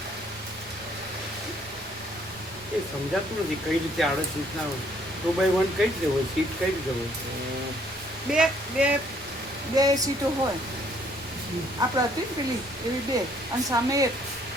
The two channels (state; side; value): normal; both; correlation 0.64